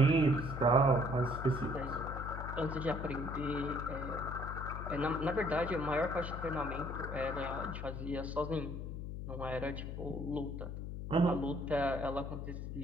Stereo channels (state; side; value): noise; left; hum, 6 dB below the sound